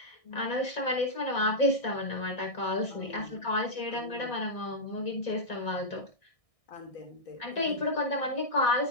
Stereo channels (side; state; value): right; late; 1.6 ms